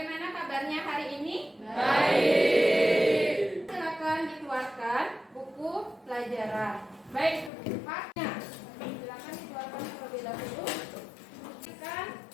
kabarnya hari ini? Baik. Silakan dikeluarkan buku pelajaran. Baik, itu buku paknya. Silakan dikeluarkan terlebih dahulu. Kan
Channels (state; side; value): drops out; right; at 7.5 s